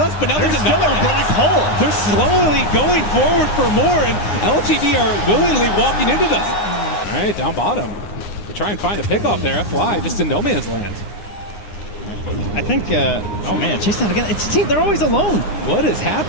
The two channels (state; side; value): late; right; 9.6 ms